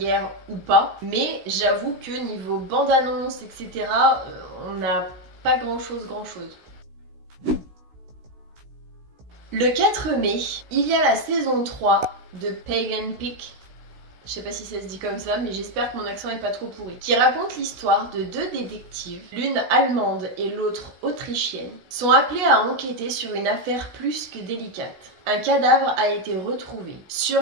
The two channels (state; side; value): late; left; 16 ms